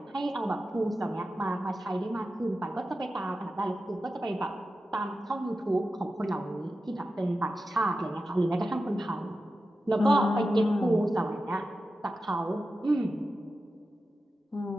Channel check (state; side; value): normal; both; correlation 0.92